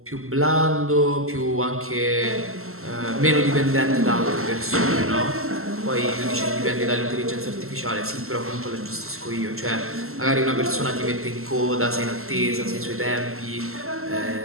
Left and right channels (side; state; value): left; late; 0.62 ms